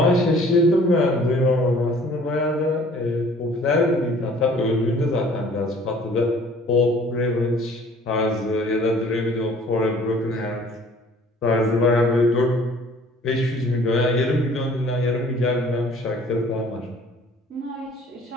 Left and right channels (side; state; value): both; normal; correlation 0.53